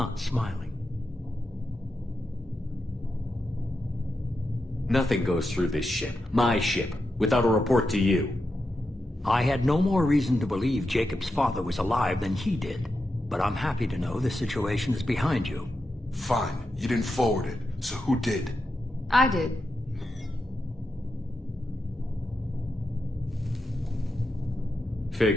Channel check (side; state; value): both; normal; correlation 0.88